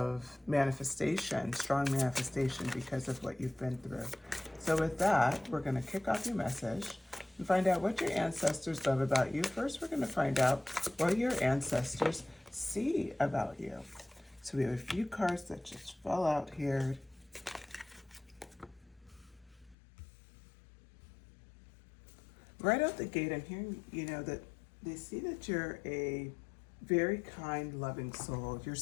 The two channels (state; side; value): drops out; right; at 19.8 s